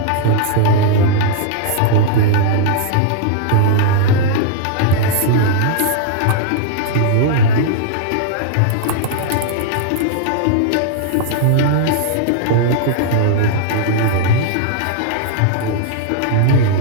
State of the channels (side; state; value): both; different; correlation -0.01